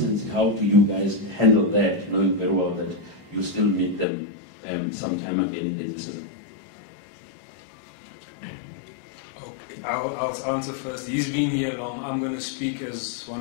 how do you guys handle that, knowing very well that you still meet them sometime again in the season? Okay, I'll answer first. He's been here long. I'm going to speak as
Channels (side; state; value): right; drops out; at 4.0 s